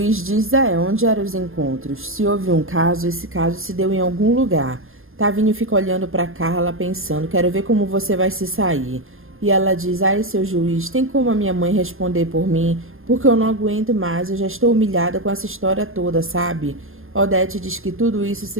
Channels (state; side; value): late; left; 0.60 ms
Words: diz onde eram os encontros. Se houve um caso, esse caso se deu em algum lugar. Tavinho fica olhando para Carla pensando, quero ver como você vai se sair. E ela diz, seu juiz, tem como a minha mãe responder por mim? Porque eu não aguento mais, eu já estou humilhada com essa história toda, sabe? Odete diz que tudo isso se